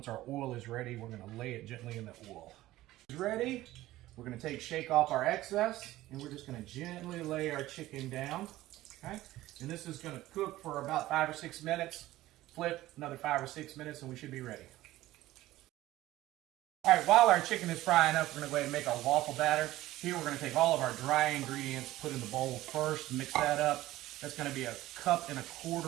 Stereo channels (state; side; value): quieter; left; 16.1 dB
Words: our oil is ready, we're going to lay it gently in the oil. It's ready. We're going to shake off our excess, and we're just going to gently lay our chicken down. Okay? And this is going to cook for about 5 or 6 minutes. Flip another 5 or 6 minutes, and we should be ready. All right, while our chicken is frying up, we're going to go ahead and make our waffle batter. Here we're going to take all of our dry ingredients, put in the bowl first, mix that up. That's going to be 1.25 cups